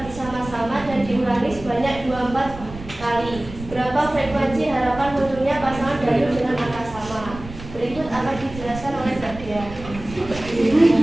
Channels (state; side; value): noise; right; rumble, 14 dB below the sound